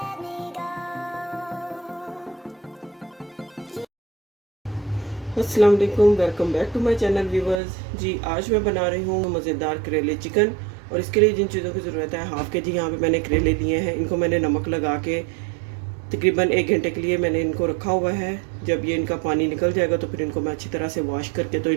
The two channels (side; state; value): left; drops out; at 7.6 s